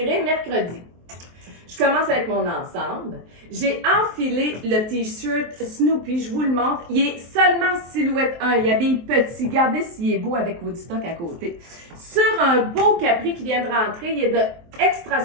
mercredi. Je commence avec mon ensemble. J'ai enfilé le t-shirt Snoopy, je vous le montre. Il est seulement silhouette 1, il habille petit. Regardez s'il est beau avec Woodstock à côté. Sur un beau capri qui vient de rentrer, il est de extra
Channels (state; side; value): late; left; 23 ms